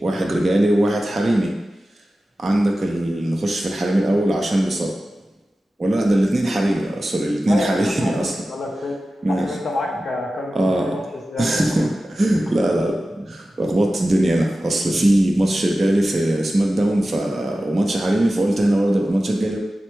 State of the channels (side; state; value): both; normal; correlation 0.95